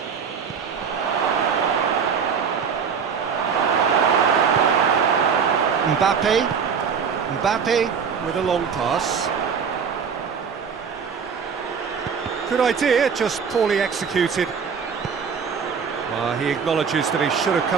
Mbappe with a long pass. Good idea, just poorly executed. Well, he acknowledges that he should have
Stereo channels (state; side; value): quieter; left; 6.5 dB